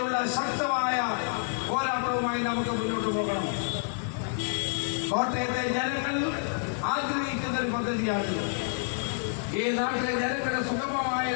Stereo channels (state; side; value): silent; right; digital silence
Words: ശക്തമായ പോരാട്ടവുമായി നമുക്ക് മുന്നോട്ട് പോകണം. കോട്ടയത്തെ ജനങ്ങൾ ആഗ്രഹിക്കുന്ന ഒരു പദ്ധതിയാണ്. ഈ നാട്ടിലെ ജനങ്ങളുടെ സുഗമമായ